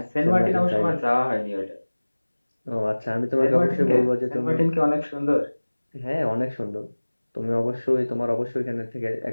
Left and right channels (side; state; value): both; inverted; correlation -1.00